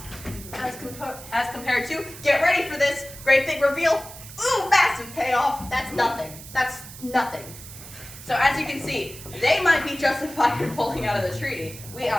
As compared to, get ready for this great big reveal. Ooh, massive payoff. That's nothing. So as you can see, they might be justified in pulling out of the treaty. We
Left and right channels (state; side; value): noise; right; hiss, 15 dB below the sound